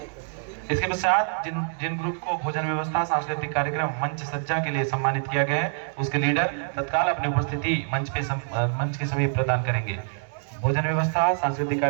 इसके पश्चात जिन ग्रुप को भोजन व्यवस्था, सांस्कृतिक कार्यक्रम, मंच सज्जा के लिए सम्मानित किया गया है, उसके लीडर तत्काल अपनी उपस्थिति मंच के सभी प्रदान करेंगे। भोजन व्यवस्था, सांस्कृतिक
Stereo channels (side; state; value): left; silent; digital silence